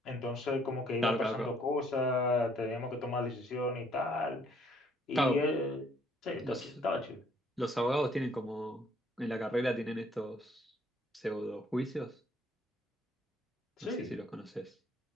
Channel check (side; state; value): both; normal; correlation 0.64